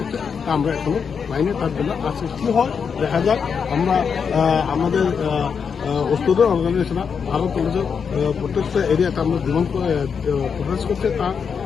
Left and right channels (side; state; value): right; quieter; 6.4 dB